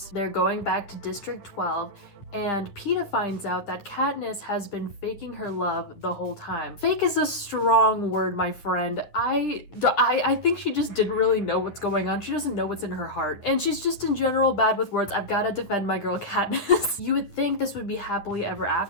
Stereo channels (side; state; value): right; late; 9.8 ms